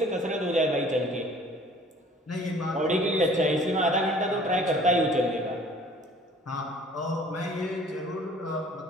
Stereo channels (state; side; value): normal; both; correlation 0.52